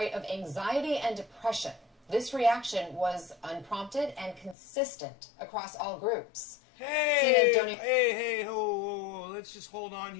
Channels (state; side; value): drops out; right; at 4.5 s